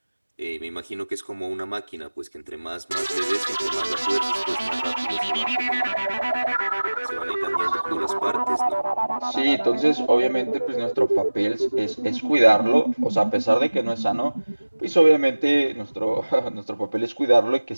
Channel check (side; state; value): both; inverted; correlation -1.00